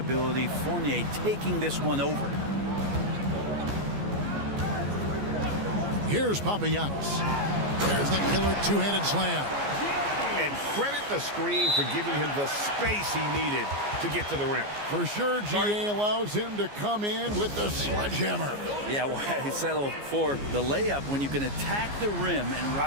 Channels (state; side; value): late; left; 14 ms